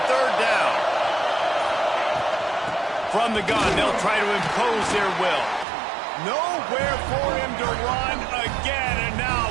3rd down. From the gun, they'll try to impose their will. Nowhere for him to run again, and now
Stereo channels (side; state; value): left; drops out; at 5.7 s